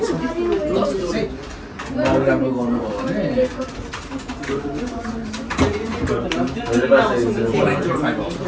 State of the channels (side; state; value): both; identical; correlation 1.00